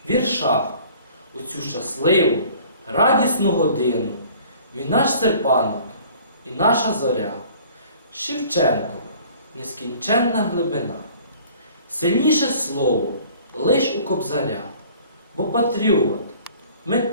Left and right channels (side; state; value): both; inverted; correlation -0.51